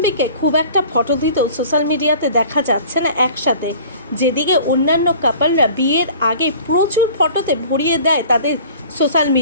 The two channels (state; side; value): inverted; both; correlation -0.46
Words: খুব একটা ফটো দিতেও সোশ্যাল মিডিয়াতে দেখা যাচ্ছে না একসাথে, যেদিকে অন্যান্য কাপলরা বিয়ের আগে প্রচুর ফটোতে ভরিয়ে দেয় তাদের সোশ্যাল